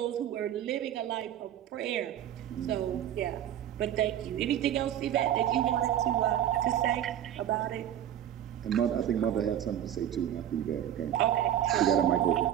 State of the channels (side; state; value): left; quieter; 10.9 dB